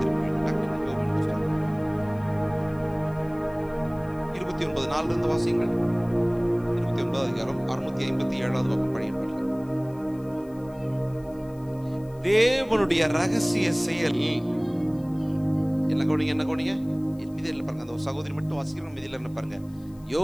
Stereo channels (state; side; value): noise; left; hiss, 29 dB below the sound